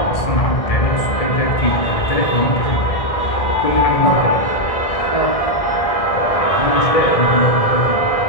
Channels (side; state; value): right; late; 1.6 ms